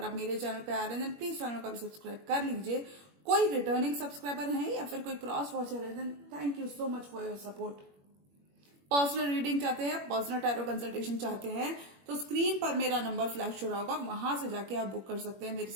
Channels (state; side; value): late; left; 21 ms